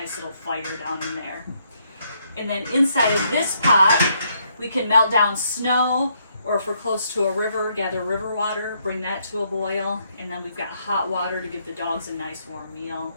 little fire down in there. And then inside of this pot, we can melt down snow, or if we're close to a river, gather river water, bring that to a boil. And then we've got hot water to give the dogs a nice warm meal.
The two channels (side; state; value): both; inverted; correlation -0.73